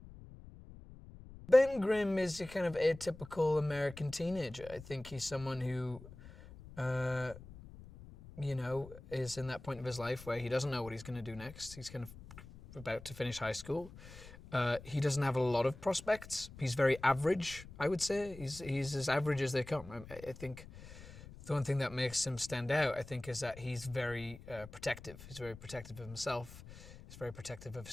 Ben Grimm is a kind of atypical American teenager. I think he's someone who, you know, is in that point of his life where he doesn't know what he's going to do next. He's kind of about to finish high school. He doesn't have a lot of prospects. He's very average, I would say. He's as average as they come. I think the one thing that makes him stand out, I think, is that he's very protective. He's very protective of himself. He's very protective of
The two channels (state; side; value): noise; left; rumble, 16 dB below the sound